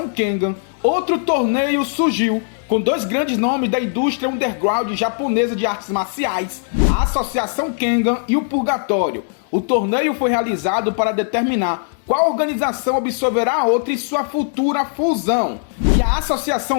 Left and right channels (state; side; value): silent; right; digital silence